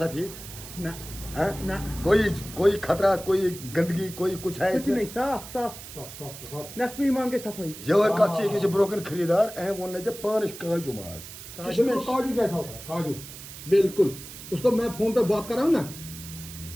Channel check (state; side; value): noise; right; hiss, 13 dB below the sound